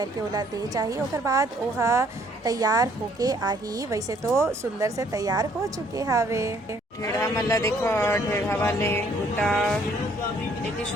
ओला दे चाहिए। ओकर बाद ओहा तैयार होके आही। वैसे तो सुंदर से तैयार हो चुके हावे। ढेढ़ा मल्ला देखो, ढेढ़ा वाले बूटा लेके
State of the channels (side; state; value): both; normal; correlation 0.63